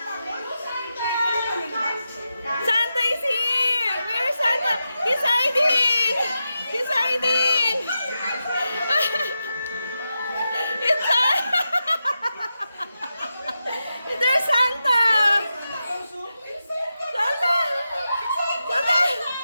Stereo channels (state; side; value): inverted; both; correlation -0.89